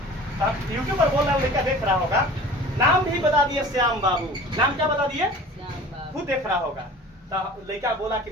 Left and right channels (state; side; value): normal; both; correlation 0.42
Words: यूट्यूब पर बोल रहे हैं, लड़का देख रहा होगा। नाम भी बता दिए श्याम बाबू। नाम क्या बता दिए? खुद देख रहा होगा। तो लड़का बोला कि